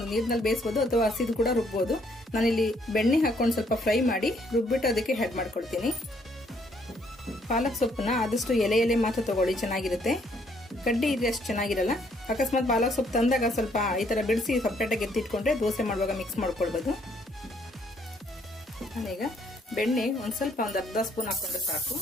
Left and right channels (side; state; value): both; normal; correlation 0.68